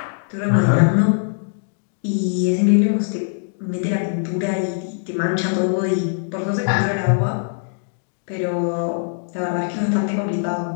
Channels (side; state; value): right; silent; digital silence